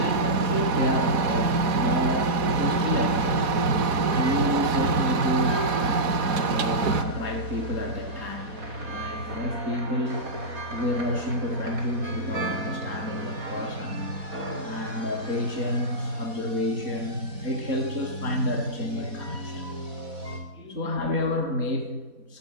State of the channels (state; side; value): late; left; 4.1 ms